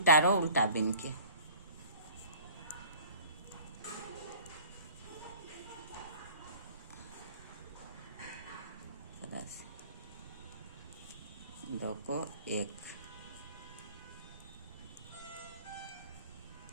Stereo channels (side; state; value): both; inverted; correlation -0.47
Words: रो उल्टा बिन के। दो को एक,